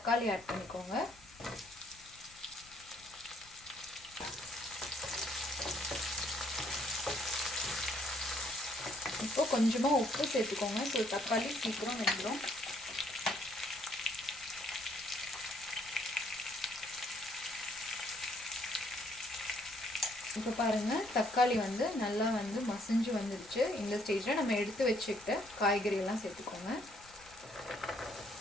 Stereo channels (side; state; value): left; noise; rumble, 25 dB below the sound